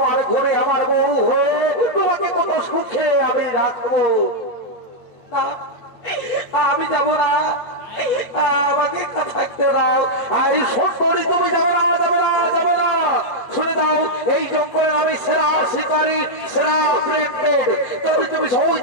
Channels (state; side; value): late; right; 8.2 ms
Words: ঘরে আমার বউ হয়ে তোমাকে কত সুখে আমি রাখবো। আমি যাবো না, আমাকে থাকতে দাও। আর এই সুন্দরী তুমি যাবে না, যাবে না, যাবে না। শুনে দাও এই জঙ্গলে আমি সেরা শিকারী সেরা প্রেগনেন্ট যদি তুমি সহজ